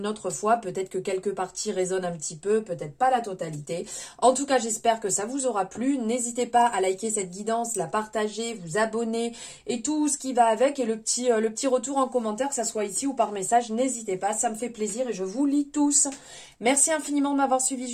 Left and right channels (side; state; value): both; identical; correlation 1.00